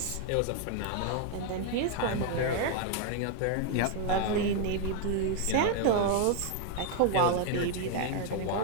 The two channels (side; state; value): both; different; correlation 0.00